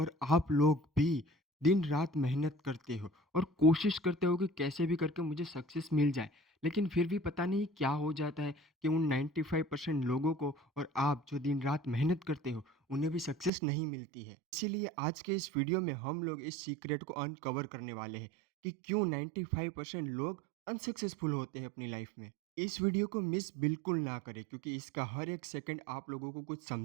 आप लोग भी दिन-रात मेहनत करते हो और कोशिश करते हो कि कैसे भी करके मुझे सक्सेस मिल जाए। लेकिन फिर भी पता नहीं क्या हो जाता है कि उन 95% लोगों को और आप जो दिन-रात मेहनत करते हो, उन्हें भी सक्सेस नहीं मिलती है। इसीलिए आज के इस वीडियो में हम लोग इस सीक्रेट को अनकवर करने वाले हैं कि क्यों 95% लोग अनसक्सेसफुल होते हैं अपनी लाइफ में। इस वीडियो को मिस बिल्कुल ना करें, क्योंकि इसका हर एक सेकंड आप लोगों को कुछ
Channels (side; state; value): left; drops out; at 13.5 s